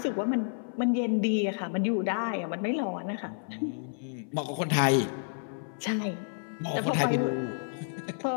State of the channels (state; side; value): silent; right; 58 dB below the other